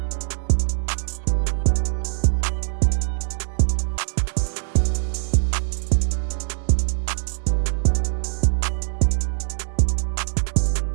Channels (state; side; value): silent; left; 61 dB below the other